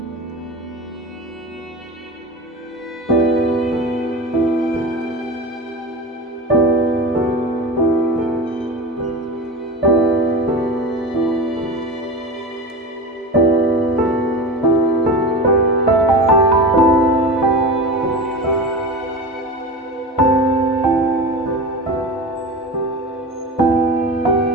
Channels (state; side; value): normal; both; correlation 0.28